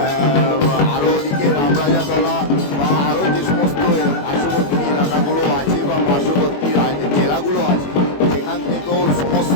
আরও ওদিকে রামরাজাতলা বা আরও যে সমস্ত পার্শ্ববর্তী এলাকাগুলো আছে বা পার্শ্ববর্তী জেলাগুলো আছে, সেখান থেকেও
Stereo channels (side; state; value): right; late; 21 ms